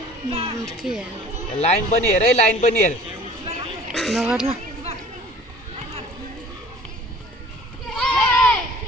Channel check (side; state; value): both; normal; correlation 0.49